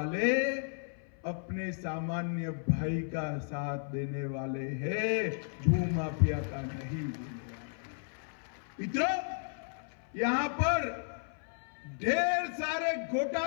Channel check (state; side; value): silent; right; 55 dB below the other